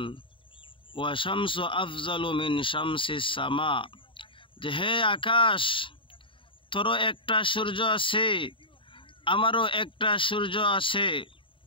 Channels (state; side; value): late; right; 0.25 ms